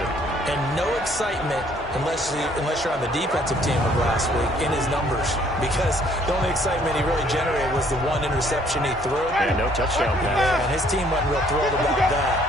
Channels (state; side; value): normal; both; correlation 0.62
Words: And no excitement unless you're on the defensive team of last week in his numbers, because the only excitement he really generated was the 1 interception he threw. And no touchdown pass. And his team wasn't real thrilled about that.